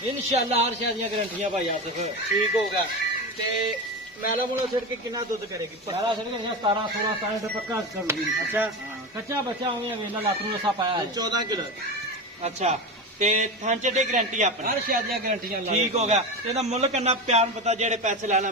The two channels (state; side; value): normal; both; correlation 0.22